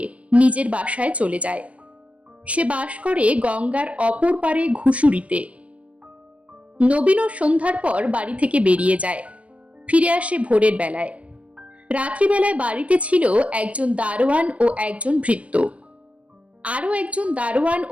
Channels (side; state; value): left; late; 0.064 ms